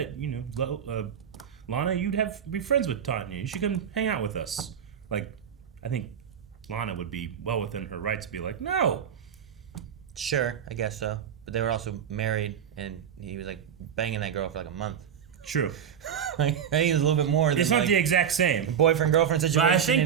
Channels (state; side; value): quieter; left; 8.3 dB